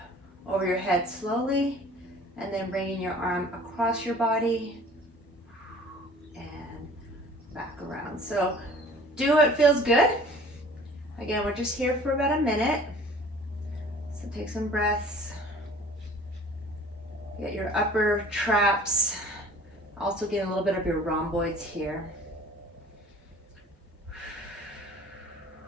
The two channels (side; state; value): both; normal; correlation 0.48